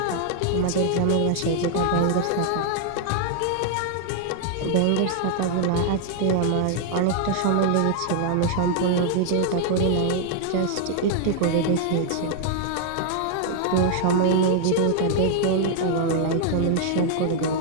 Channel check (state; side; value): different; both; correlation 0.00